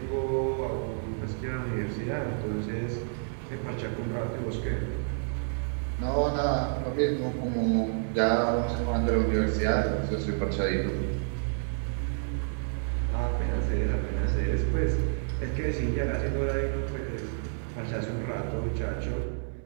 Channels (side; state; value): left; silent; digital silence